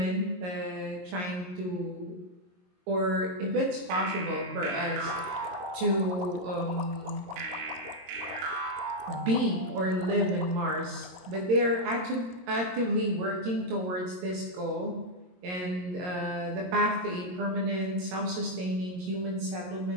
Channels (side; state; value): left; late; 22 ms